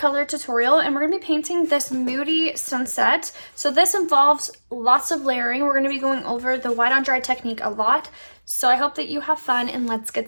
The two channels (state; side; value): inverted; both; correlation -1.00